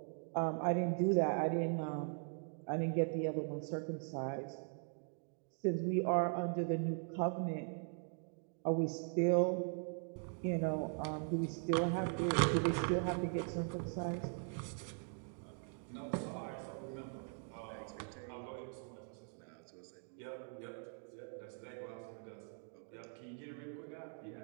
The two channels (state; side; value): silent; left; 51 dB below the other